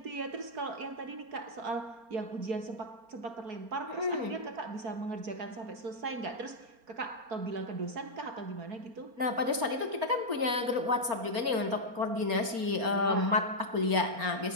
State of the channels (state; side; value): late; left; 4.3 ms